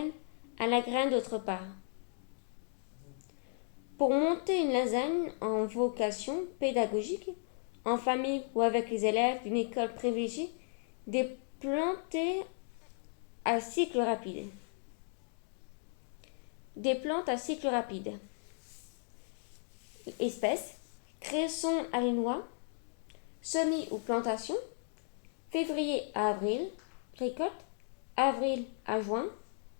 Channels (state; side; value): silent; right; digital silence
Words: à la graine d'autre part. Pour monter une lasagne en vocation pédagogique, en famille ou avec les élèves d'une école privilégiée, des plantes à cycle rapide. Des plantes à cycle rapide. Espèces, cresson alénois, semis ou plantations, février à avril, récolte, avril à juin,